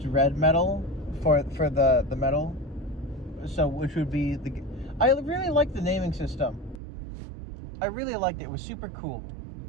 red metal for the metal, so which would be I really liked the naming system. I really liked it. It was super cool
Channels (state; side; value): drops out; left; at 6.8 s